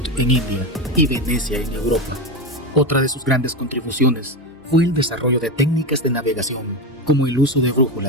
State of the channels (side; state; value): both; normal; correlation 0.16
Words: en India y Venecia en Europa. Otra de sus grandes contribuciones fue el desarrollo de técnicas de navegación, como el uso de